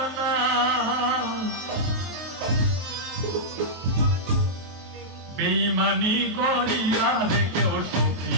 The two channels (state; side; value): late; left; 23 ms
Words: না। বেঈমানি করিয়া রে কেউ সুখী